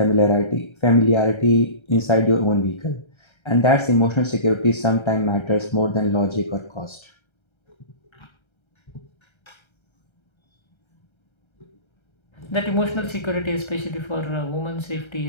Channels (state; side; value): late; right; 1.3 ms